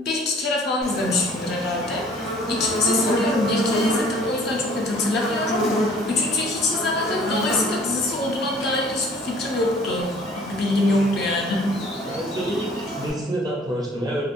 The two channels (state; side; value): normal; both; correlation 0.54